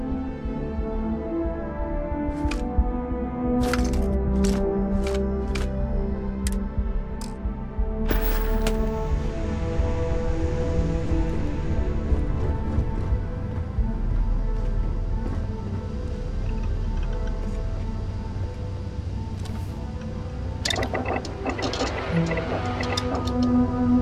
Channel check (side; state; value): both; identical; correlation 1.00